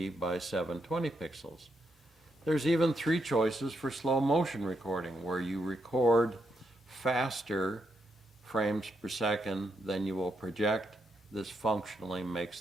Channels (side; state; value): both; normal; correlation 0.80